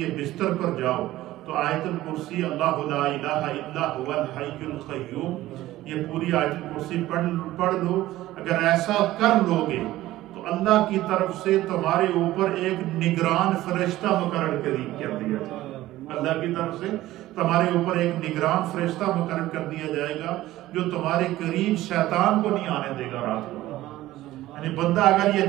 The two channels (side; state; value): left; quieter; 15.8 dB